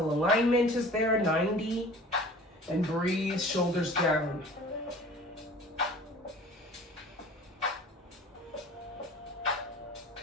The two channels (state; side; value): normal; both; correlation 0.44